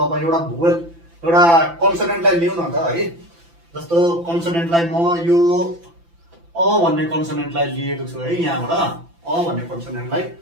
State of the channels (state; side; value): late; left; 5.9 ms